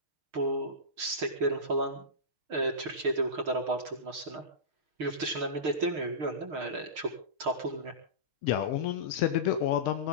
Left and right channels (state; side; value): late; left; 6.5 ms